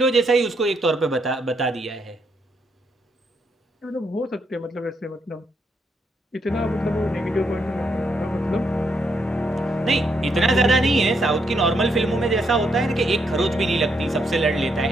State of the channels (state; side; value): normal; both; correlation 0.77